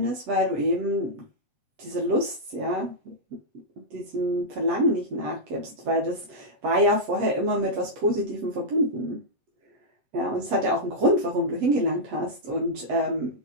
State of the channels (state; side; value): late; left; 8.1 ms